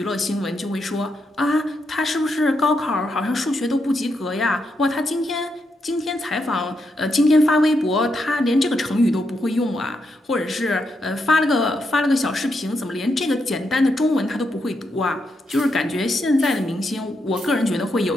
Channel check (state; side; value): normal; both; correlation 0.82